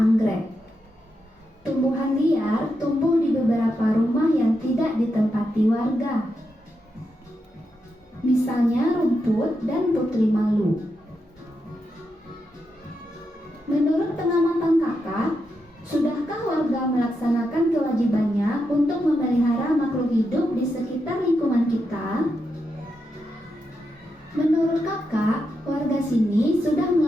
Tumbuhan liar tumbuh di beberapa rumah yang tidak ditempati warga. Misalnya rumput dan putri malu. Menurut pengamatan Kakak, sudahkah warga melaksanakan kewajibannya untuk memelihara makhluk hidup di sekitar lingkungan kita? Menurut Kakak, warga sini sudah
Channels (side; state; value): both; normal; correlation 0.85